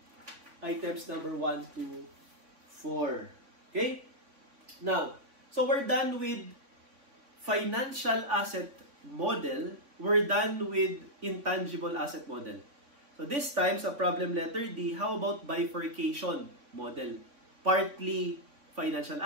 items number 1 to 4. Okay? Now, so we're done with financial asset model, we're done with intangible asset model. So this time, sa problem letter D, how about bifurcation model? Partly financial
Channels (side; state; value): left; late; 3.6 ms